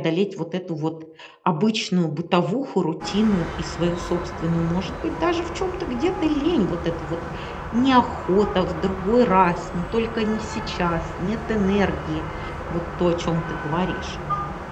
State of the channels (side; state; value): both; identical; correlation 1.00